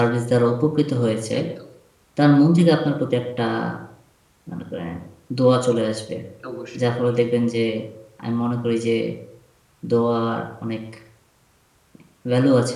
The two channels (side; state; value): both; identical; correlation 1.00